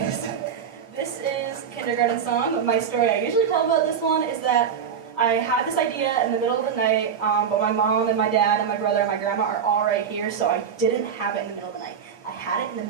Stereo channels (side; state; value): left; quieter; 7.4 dB